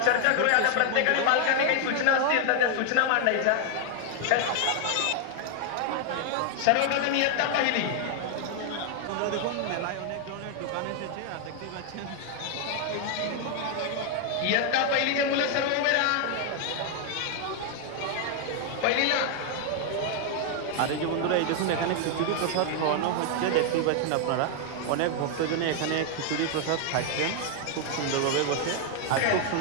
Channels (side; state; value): both; different; correlation 0.00